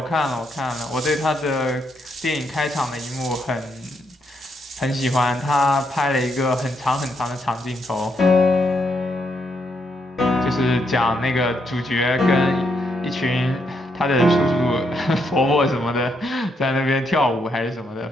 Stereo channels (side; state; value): both; normal; correlation 0.78